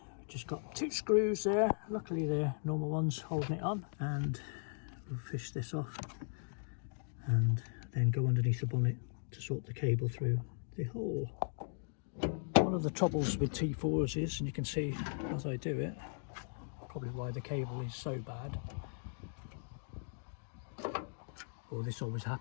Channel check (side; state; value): right; silent; digital silence